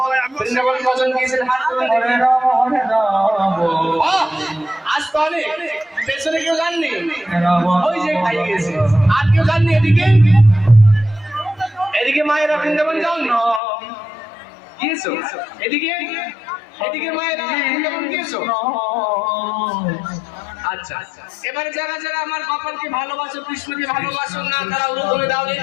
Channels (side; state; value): right; drops out; at 13.6 s